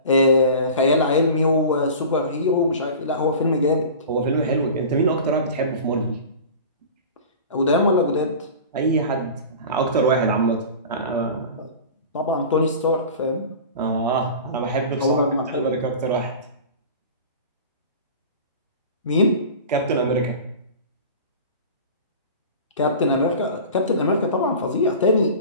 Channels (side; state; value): both; inverted; correlation -0.36